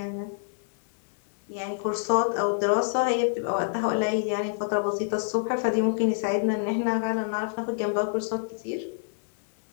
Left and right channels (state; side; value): silent; right; 60 dB below the other